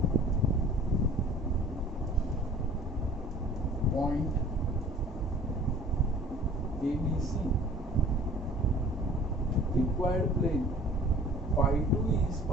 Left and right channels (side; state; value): both; normal; correlation 0.48